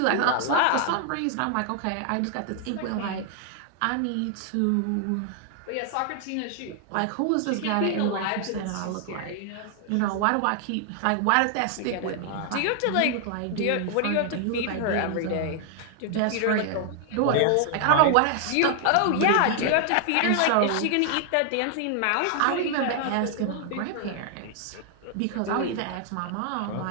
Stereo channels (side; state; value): both; different; correlation 0.00